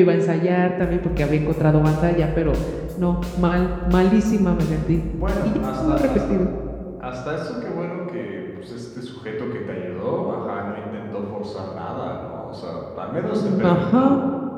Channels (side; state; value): both; identical; correlation 1.00